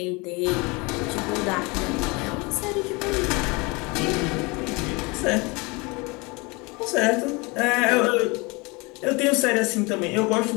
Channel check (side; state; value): right; quieter; 26.9 dB